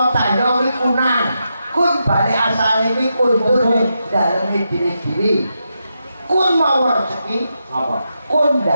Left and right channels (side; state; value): both; inverted; correlation -0.86